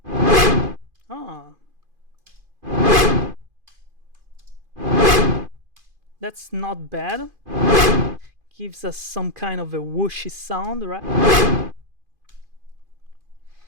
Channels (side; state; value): left; late; 2.5 ms